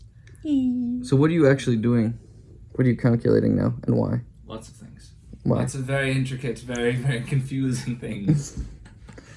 So what are you actually doing? What are you calculating now, and why? Lots of things. Why? Lots of very intricate, very, very confusing things.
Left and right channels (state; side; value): identical; both; correlation 1.00